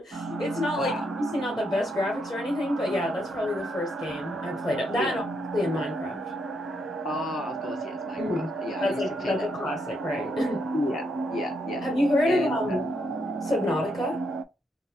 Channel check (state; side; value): normal; both; correlation 0.77